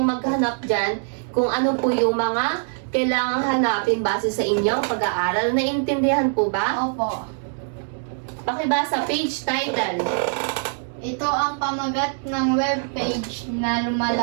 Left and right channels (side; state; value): left; silent; digital silence